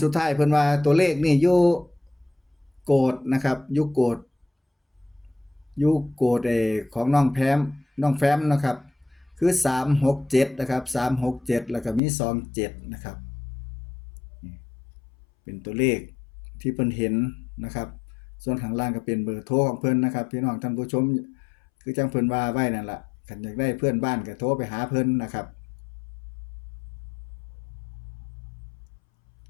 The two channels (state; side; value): drops out; right; at 12.0 s